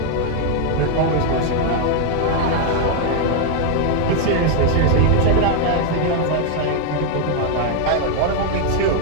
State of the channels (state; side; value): different; both; correlation 0.00